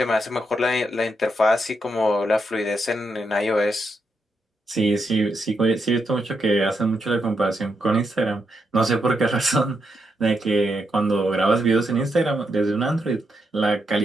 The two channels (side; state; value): both; normal; correlation 0.82